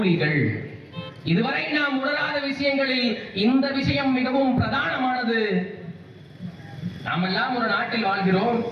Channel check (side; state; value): both; identical; correlation 1.00